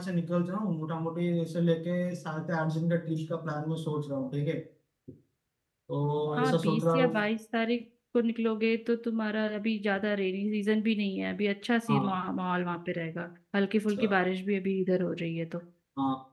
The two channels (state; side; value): identical; both; correlation 1.00